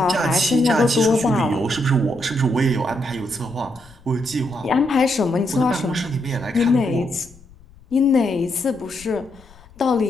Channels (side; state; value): left; noise; rumble, 24 dB below the sound